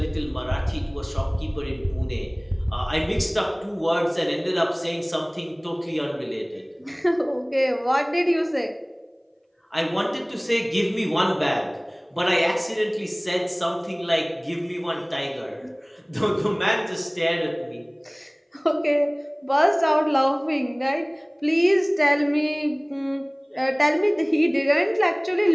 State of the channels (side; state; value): both; identical; correlation 1.00